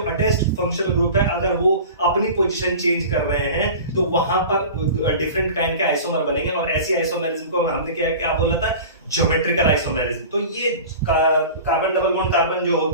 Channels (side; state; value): both; inverted; correlation -0.37